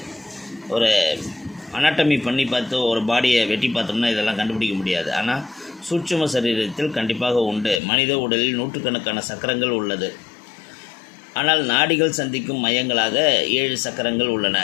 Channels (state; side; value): drops out; right; at 7.8 s